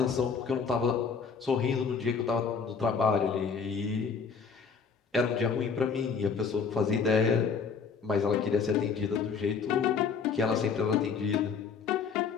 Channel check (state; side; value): quieter; right; 5.7 dB